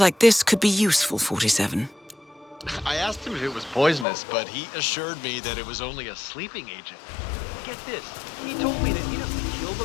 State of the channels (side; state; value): right; drops out; at 4.0 s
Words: this could be useful, 47. I asked him if it was poisonous, but he assured me that it was only a sleeping agent. Get this, he told me that he doesn't kill the